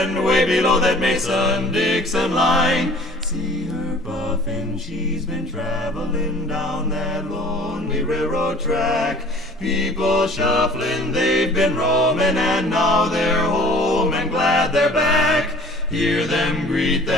way below that Mason-Dixon line. See her puffin', she's been traveling down that lonely railroad track. People shuffling, they've been roaming, and now they're home and glad they're back. Hear them greet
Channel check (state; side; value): normal; both; correlation 0.49